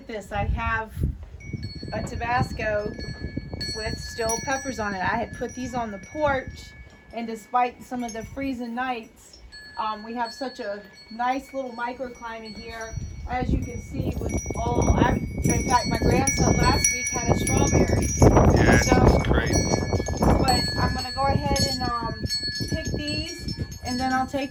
this. I have a Tabasco with still peppers on it. I had put these on the porch, and despite some of the freezing nights, we have such a nice little microclimate here. As you can see, with in fact, my grandson last week had a strawberry. Yeah, So, it's crazy. but I'm gonna go ahead and pick these, and then I'll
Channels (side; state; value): both; identical; correlation 1.00